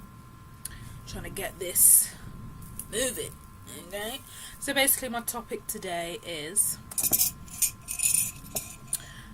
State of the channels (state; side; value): identical; both; correlation 1.00